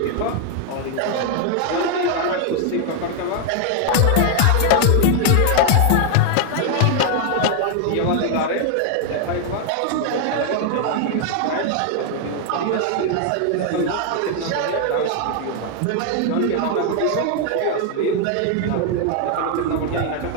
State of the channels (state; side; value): different; both; correlation 0.00